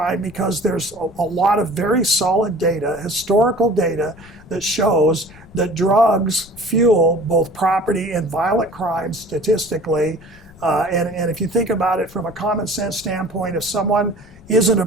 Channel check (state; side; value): noise; left; rumble, 24 dB below the sound